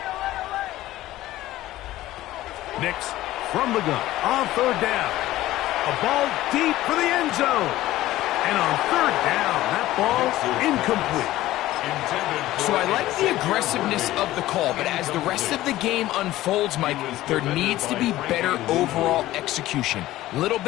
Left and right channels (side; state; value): right; quieter; 15.7 dB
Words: Nix from the gun on third down. A ball deep for the end zone. And on third down, that ball incomplete. So I like the aggressiveness of the call, but as the rest of the game unfolds, Mike, there needs to be better overall execution. A little